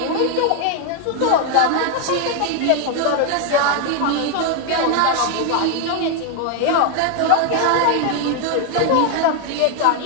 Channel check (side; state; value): both; different; correlation 0.01